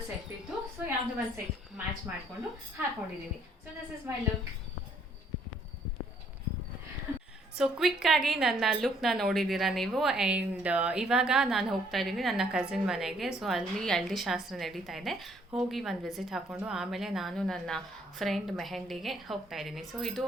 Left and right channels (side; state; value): both; normal; correlation 0.65